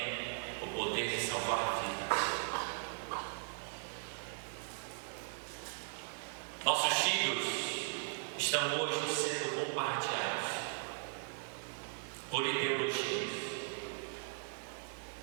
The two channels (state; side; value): silent; left; digital silence